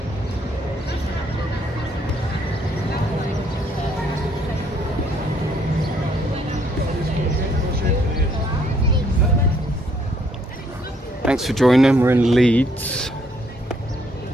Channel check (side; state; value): both; normal; correlation 0.68